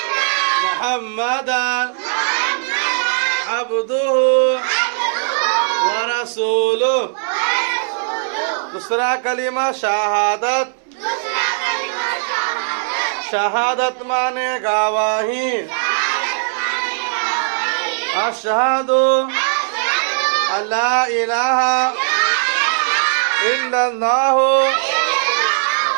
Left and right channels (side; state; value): left; silent; 67 dB below the other